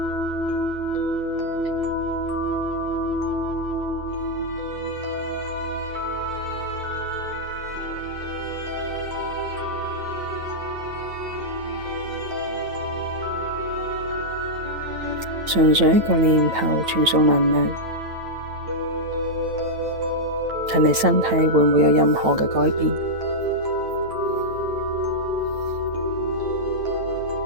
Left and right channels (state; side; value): late; left; 9.0 ms